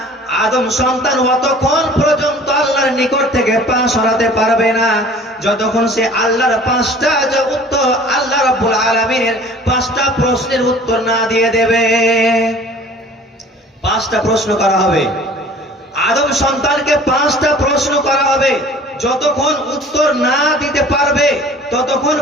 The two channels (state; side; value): normal; both; correlation 0.47